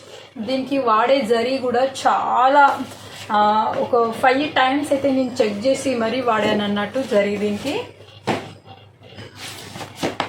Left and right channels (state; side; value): identical; both; correlation 1.00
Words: దీనికి వాడే జరీ కూడా చాలా ఒక 5 times అయితే నేను చెక్ చేసి మరీ వాడాను అన్నట్టు జరీ దీనికి.